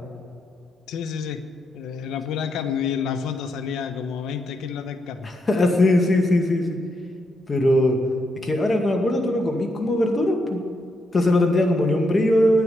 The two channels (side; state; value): both; normal; correlation 0.81